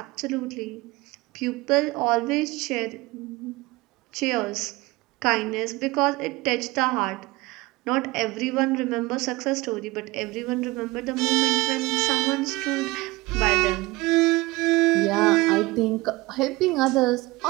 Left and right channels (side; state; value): left; quieter; 21.6 dB